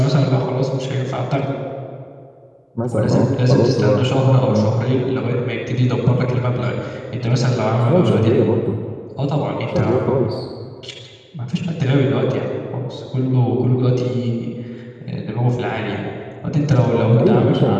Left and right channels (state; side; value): identical; both; correlation 1.00